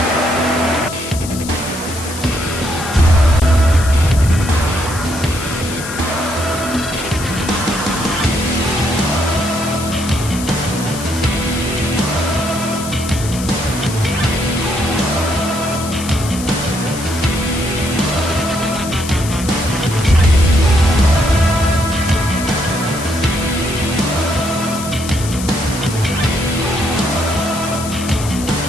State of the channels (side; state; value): left; noise; hiss, 10 dB below the sound